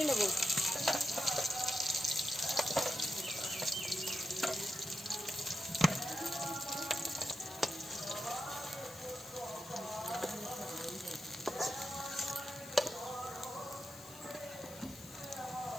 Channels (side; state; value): left; noise; hiss, 17 dB below the sound